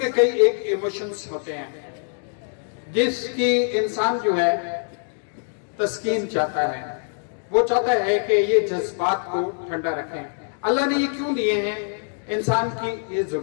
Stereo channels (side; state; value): right; silent; digital silence